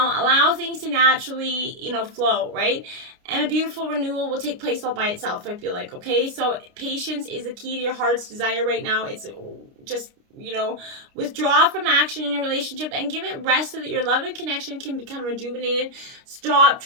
Allow things to naturally, flow, right? And a beautiful renewal will take place all by itself, I feel like, okay? So patience is the key to your heart's desire right now. It's just withdraw from action in your relationship and give it rest so that your love and connection can become rejuvenated. Stop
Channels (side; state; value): left; late; 29 ms